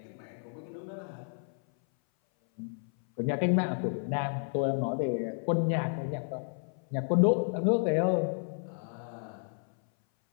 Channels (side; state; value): right; silent; 57 dB below the other